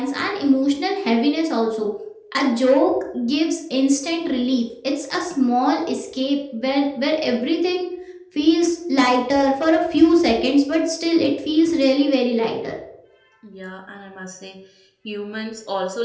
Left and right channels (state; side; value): identical; both; correlation 1.00